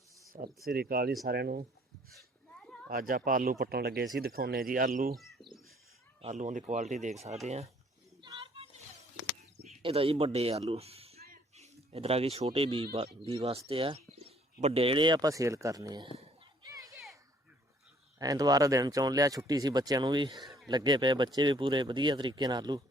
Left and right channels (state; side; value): normal; both; correlation 0.61